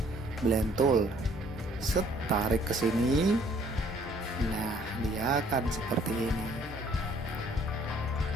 blend tool, tarik ke sini. Nah, dia akan seperti ini.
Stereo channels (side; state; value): both; normal; correlation 0.60